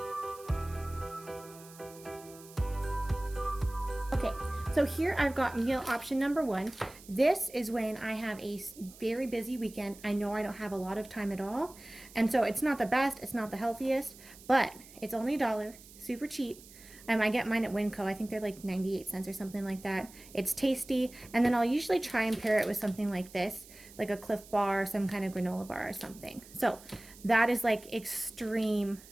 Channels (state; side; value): noise; right; hiss, 20 dB below the sound